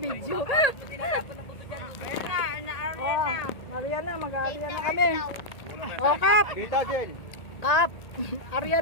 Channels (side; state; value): right; late; 1.8 ms